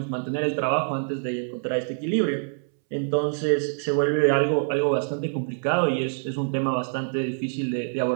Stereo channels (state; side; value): silent; left; 61 dB below the other